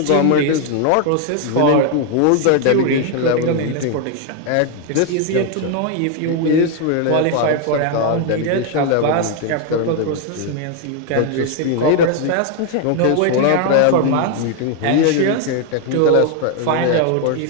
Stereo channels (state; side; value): different; both; correlation 0.01